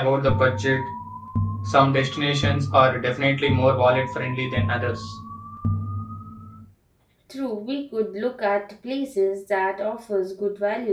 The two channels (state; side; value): identical; both; correlation 1.00